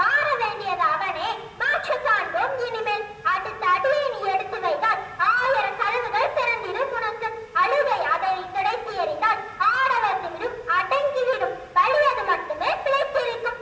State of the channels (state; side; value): identical; both; correlation 1.00